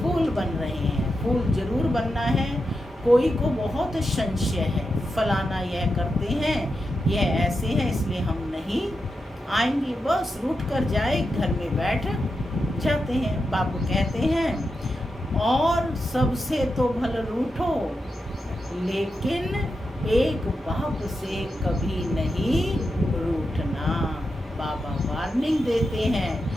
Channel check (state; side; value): normal; both; correlation 0.88